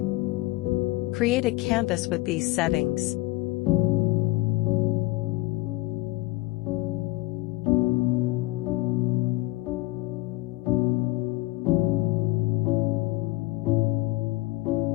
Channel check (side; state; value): right; quieter; 19.8 dB